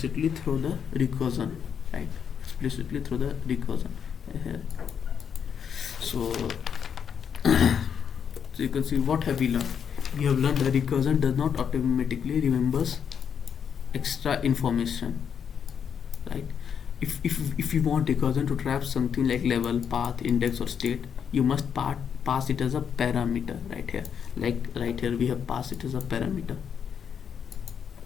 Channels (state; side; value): quieter; right; 7.6 dB